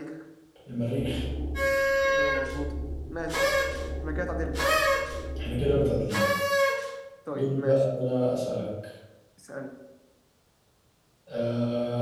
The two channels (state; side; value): identical; both; correlation 1.00